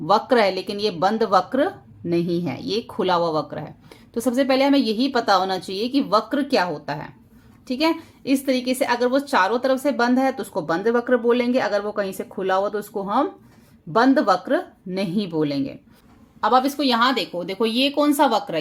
है लेकिन ये बंद वक्र नहीं है, ये खुला हुआ वक्र है। तो सबसे पहले हमें यही पता होना चाहिए कि वक्र क्या होता है। ठीक है, इस तरीके से अगर वो चारों तरफ से बंद है तो उसको बंद वक्र बोलेंगे, अगर वो कहीं से खुला हुआ तो उसको हम बंद वक्र नहीं बोलेंगे। अब आप इसको यहां देखो, देखो ये कौन सा वक्र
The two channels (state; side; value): identical; both; correlation 1.00